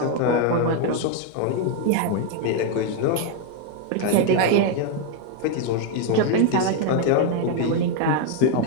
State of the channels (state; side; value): different; both; correlation 0.01